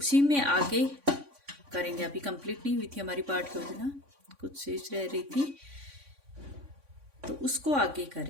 में आगे करेंगे। अभी कंप्लीट नहीं हुई थी हमारी पाठ योजना, कुछ शेष रह रही थी, तो उसको आगे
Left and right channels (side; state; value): left; late; 3.5 ms